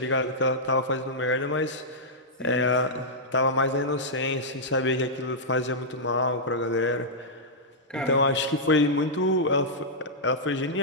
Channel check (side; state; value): both; normal; correlation -0.10